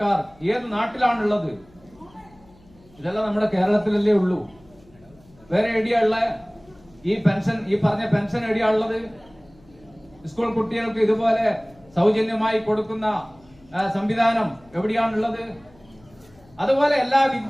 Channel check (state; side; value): noise; left; hum, 28 dB below the sound